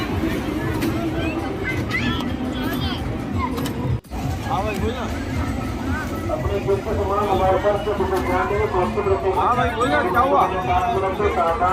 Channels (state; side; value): identical; both; correlation 1.00